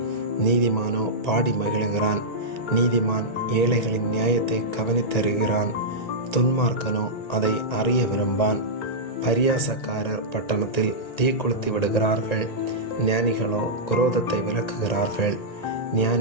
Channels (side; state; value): right; late; 1.9 ms